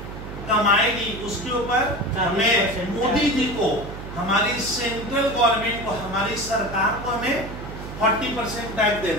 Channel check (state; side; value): noise; right; hum, 10 dB below the sound